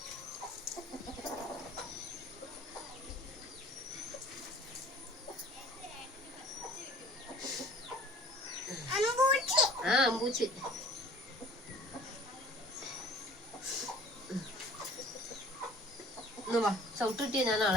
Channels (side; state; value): both; normal; correlation 0.50